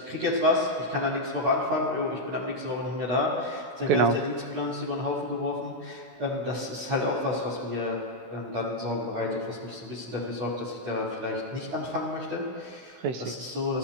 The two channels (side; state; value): left; late; 16 ms